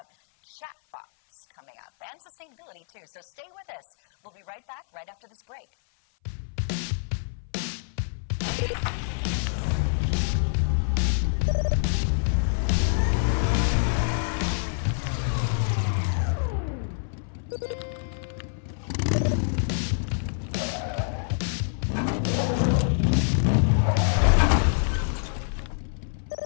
chatbots coming up and sustainability too. So stay with us. We'll be right back right after this break.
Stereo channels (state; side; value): silent; right; 61 dB below the other